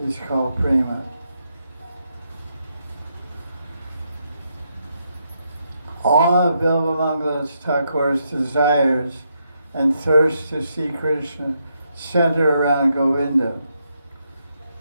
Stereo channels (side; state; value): both; inverted; correlation -0.80